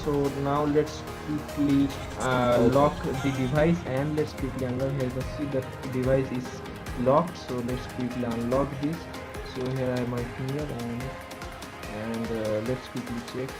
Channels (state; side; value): identical; both; correlation 1.00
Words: so now let's quickly lock the device and let's quickly unlock. Here you can see the device is locked. So let's quickly unlock this. So here I have my finger, and let's quickly check.